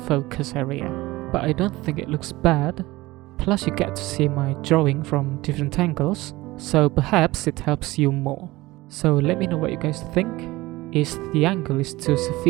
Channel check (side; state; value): left; quieter; 19.5 dB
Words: focus area. But I don't think it looks bad, plus you get to see my drawing from different angles, so perhaps it helps you more. So let me know what you guys think. Is the angle too